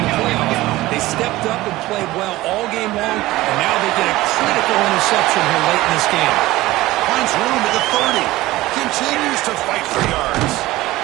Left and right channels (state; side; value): quieter; left; 17.8 dB